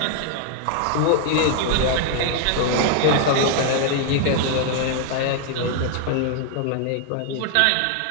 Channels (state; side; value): different; both; correlation 0.00